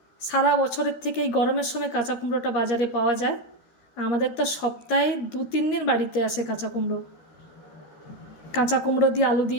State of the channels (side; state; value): right; late; 13 ms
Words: সারা বছরের থেকে এই গরমের সময় কাঁচা কুমড়োটা বাজারে পাওয়া যায়। আমাদের তো সপ্তাহে 2-3 দিন বাড়িতে আসে কাঁচা কুমড়ো। কাঁচা কুমড়ো দিয়ে আলু